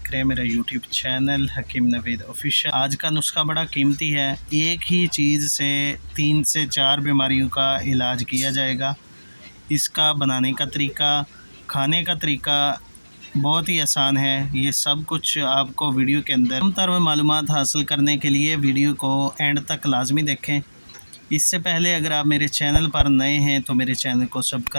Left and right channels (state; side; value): inverted; both; correlation -1.00